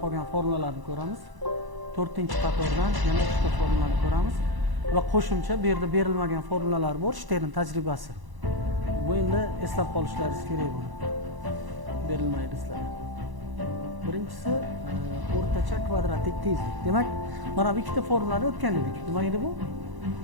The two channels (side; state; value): left; late; 1.0 ms